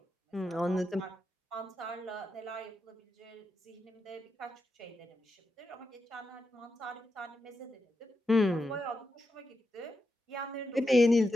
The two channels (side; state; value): both; normal; correlation 0.87